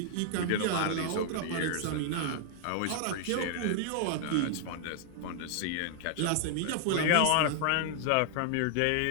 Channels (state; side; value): different; both; correlation 0.00